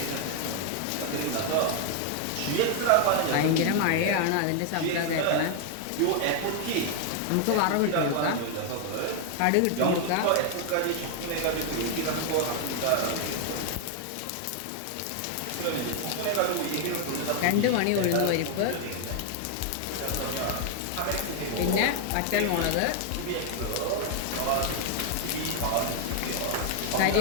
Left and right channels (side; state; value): both; different; correlation 0.00